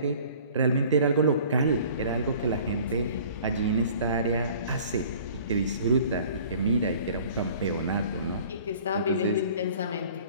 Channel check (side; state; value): both; inverted; correlation -0.49